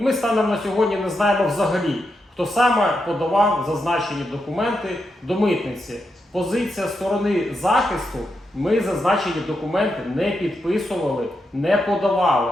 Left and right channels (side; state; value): both; normal; correlation 0.84